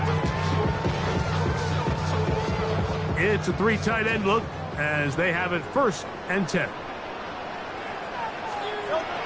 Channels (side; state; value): both; identical; correlation 1.00